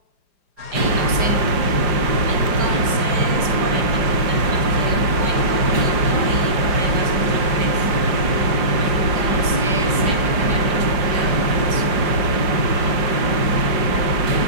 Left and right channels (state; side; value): late; left; 5.0 ms